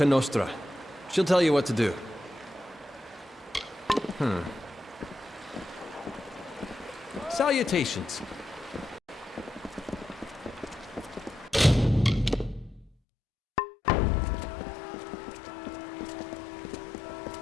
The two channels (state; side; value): drops out; right; at 12.9 s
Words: Nostra. She'll tell you what to do. Salutations.